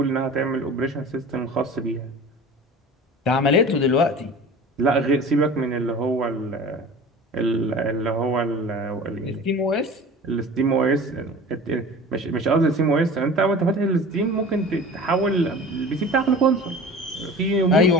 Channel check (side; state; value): both; normal; correlation 0.38